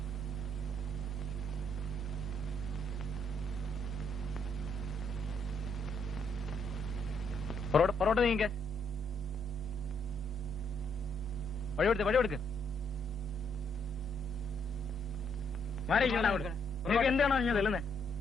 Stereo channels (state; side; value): normal; both; correlation 0.73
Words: പൊറോട്ട നീങ്ങ. വഴി കൊടുക്ക്. എന്താണോ ഞാൻ തെല്ലുന്നേ?